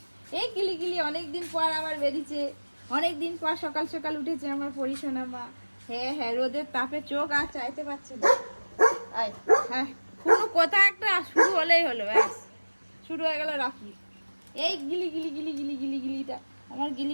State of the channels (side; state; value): both; inverted; correlation -1.00